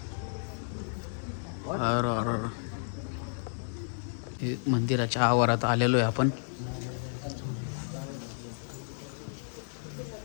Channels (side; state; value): right; silent; digital silence